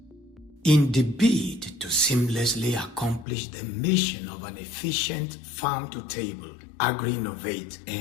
In the bid to seamlessly accomplish the mission of an efficient farm-to-table, agri-innovate,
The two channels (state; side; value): drops out; right; at 3.2 s